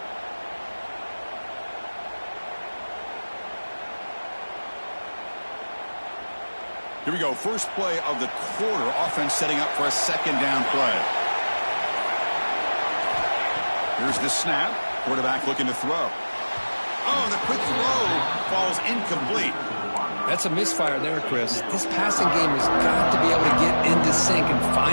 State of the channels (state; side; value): inverted; both; correlation -1.00